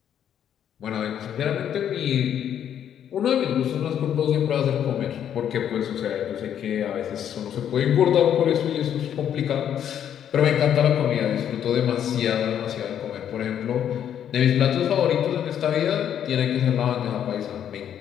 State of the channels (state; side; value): quieter; right; 9.6 dB